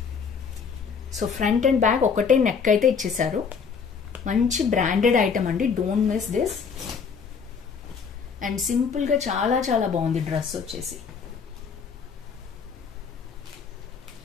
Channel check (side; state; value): right; quieter; 6.0 dB